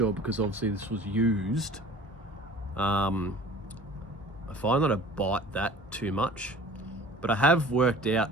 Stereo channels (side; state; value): both; normal; correlation 0.45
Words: because obviously this was used. I find that I bite that too much, but I have worked